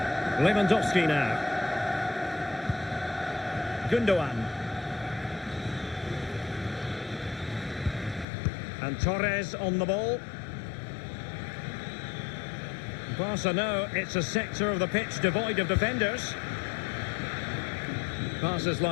Lewandowski now. Gundogan. And Torres on the ball. Barca know it's a sector of the pitch devoid of defenders. Passes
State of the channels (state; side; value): drops out; right; at 8.2 s